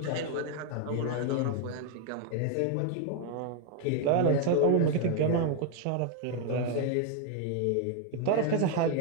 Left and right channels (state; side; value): different; both; correlation 0.01